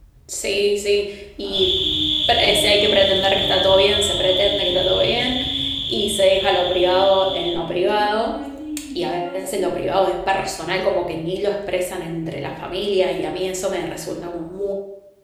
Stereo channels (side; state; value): both; identical; correlation 1.00